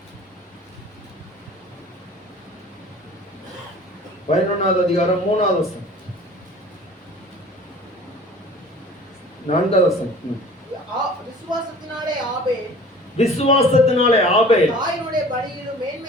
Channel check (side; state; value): both; normal; correlation 0.45